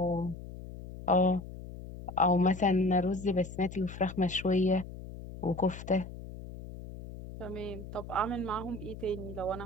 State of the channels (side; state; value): left; noise; hum, 12 dB below the sound